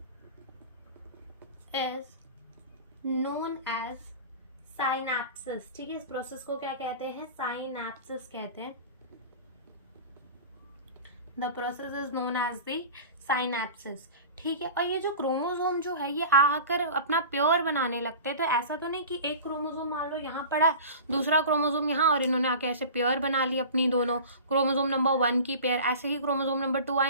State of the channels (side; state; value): both; inverted; correlation -0.36